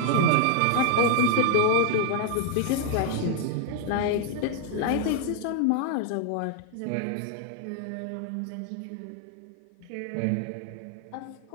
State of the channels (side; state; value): both; different; correlation 0.00